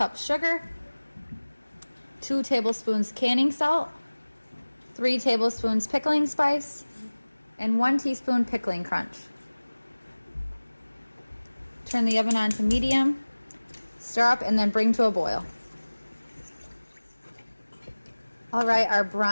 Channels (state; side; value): inverted; both; correlation -1.00